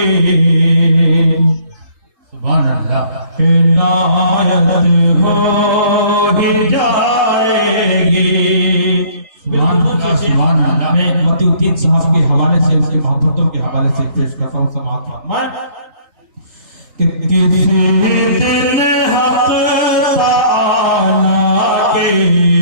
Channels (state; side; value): late; left; 3.9 ms